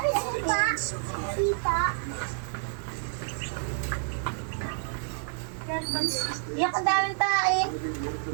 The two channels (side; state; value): left; silent; 59 dB below the other